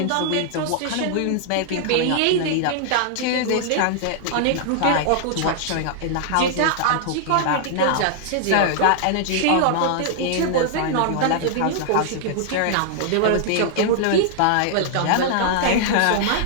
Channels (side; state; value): both; different; correlation -0.01